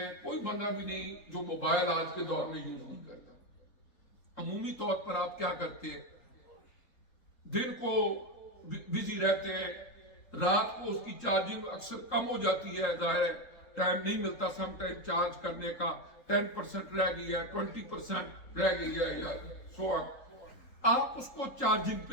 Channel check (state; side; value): late; right; 3.8 ms